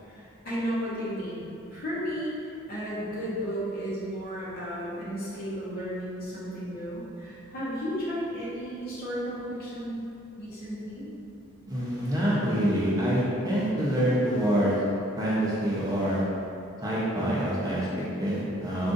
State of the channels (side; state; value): both; normal; correlation 0.62